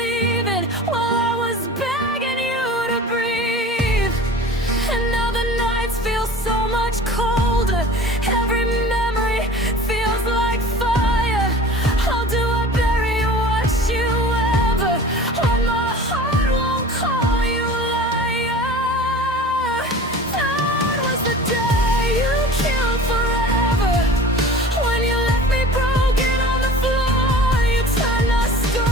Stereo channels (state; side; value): normal; both; correlation 0.40